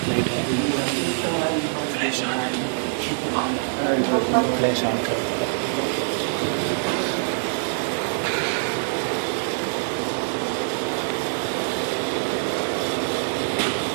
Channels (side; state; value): left; silent; digital silence